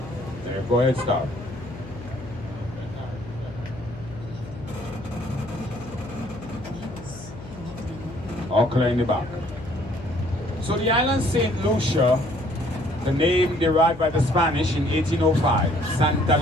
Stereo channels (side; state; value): left; noise; hum, 15 dB below the sound